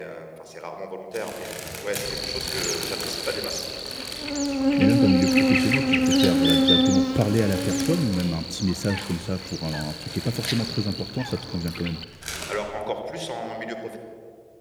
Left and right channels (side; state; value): both; identical; correlation 1.00